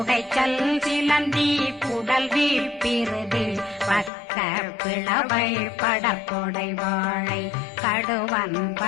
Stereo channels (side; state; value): right; drops out; at 4.1 s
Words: சிலந்தி குடல் வீழ்பிருதி பக்க பிளவை படற்கொடை வாழை கடுவன்